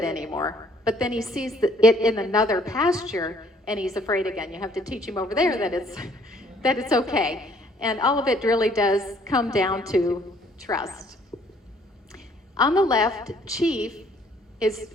anymore. But then he sees it in another pasture and he's afraid again. You have to teach him over there that it's okay. And all of it really does come down to trust. On the left, Chief is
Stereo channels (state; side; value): normal; both; correlation 0.62